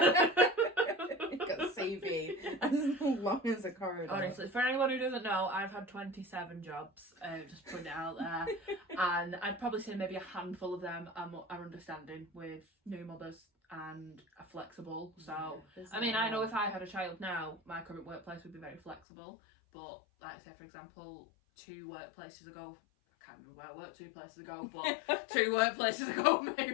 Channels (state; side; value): drops out; right; at 19.0 s